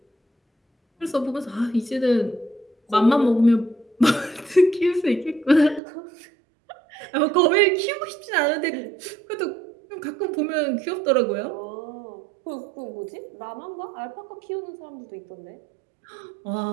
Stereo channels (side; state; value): left; drops out; at 5.8 s